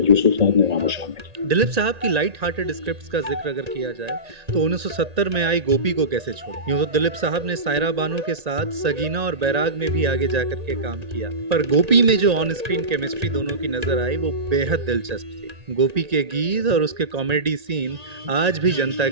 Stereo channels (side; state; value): left; late; 1.9 ms